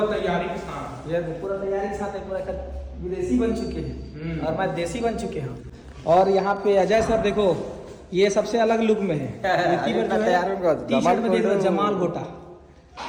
तैयारी के साथ, ये पूरा तैयारी के साथ पूरा विदेशी बन चुके हैं और मैं देसी बन चुके हैं। और यहाँ पे अजय सर देखो, ये सबसे अलग लुक में है, टी-शर्ट में देख रहे जमाल घोटा।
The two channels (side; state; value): both; identical; correlation 1.00